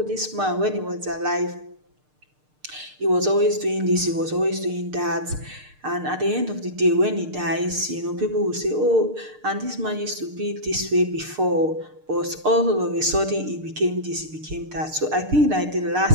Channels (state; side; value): late; left; 6.6 ms